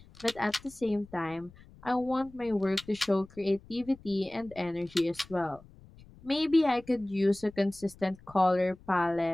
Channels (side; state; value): left; noise; rumble, 23 dB below the sound